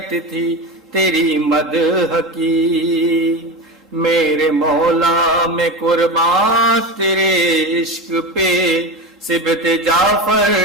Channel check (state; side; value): normal; both; correlation 0.22